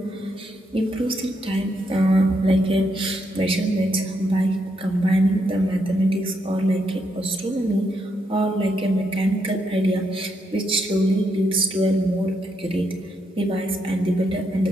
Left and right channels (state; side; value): normal; both; correlation 0.79